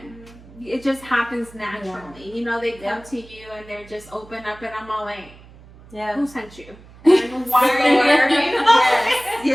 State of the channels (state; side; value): noise; right; hum, 22 dB below the sound